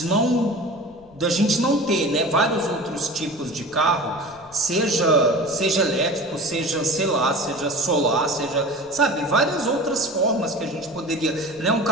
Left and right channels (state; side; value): noise; left; rumble, 28 dB below the sound